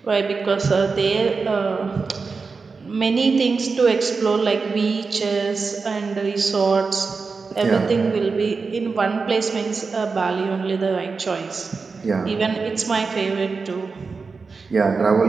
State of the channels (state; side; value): quieter; left; 4.6 dB